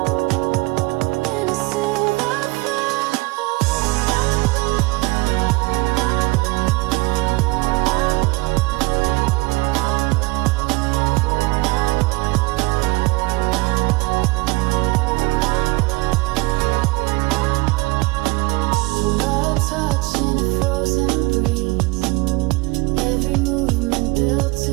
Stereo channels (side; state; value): left; quieter; 23.5 dB